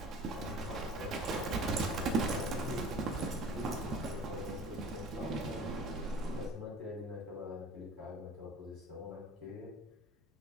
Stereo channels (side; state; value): both; normal; correlation 0.43